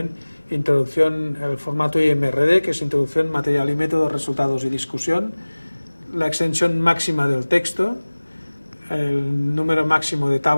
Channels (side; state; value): both; inverted; correlation -1.00